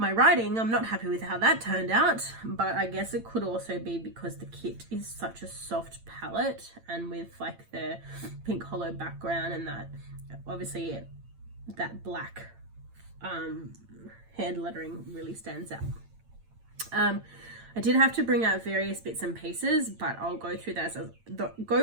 writing, I'm not happy with how that turned out, but I guess it could also be because the kit is such a soft palette, and with like the pink hollow background and that obviously that black hand lettering really stands out. I did have to bring out various bits and pieces, but I'll go through those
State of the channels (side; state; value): left; late; 8.9 ms